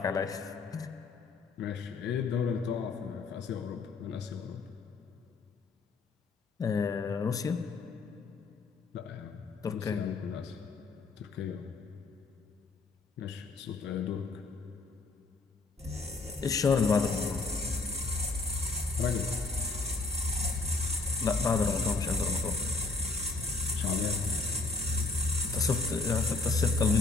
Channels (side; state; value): right; quieter; 3.8 dB